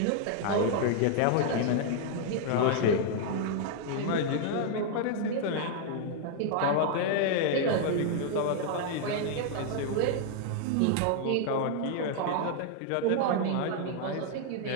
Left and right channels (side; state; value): both; different; correlation 0.00